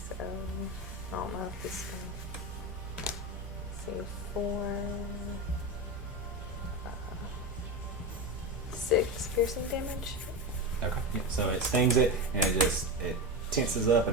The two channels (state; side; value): normal; both; correlation 0.19